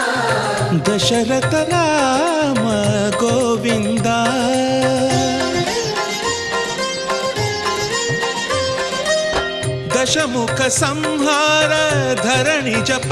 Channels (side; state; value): both; identical; correlation 1.00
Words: దశరథ రామ గోవింద దశముఖ సంహార ధరణి